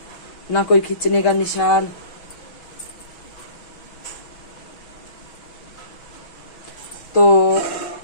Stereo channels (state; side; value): late; right; 6.1 ms